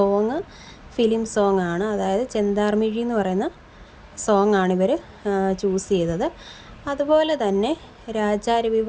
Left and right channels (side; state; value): both; identical; correlation 1.00